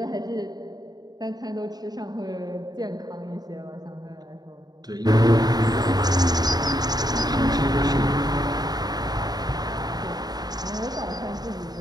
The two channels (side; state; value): left; late; 0.19 ms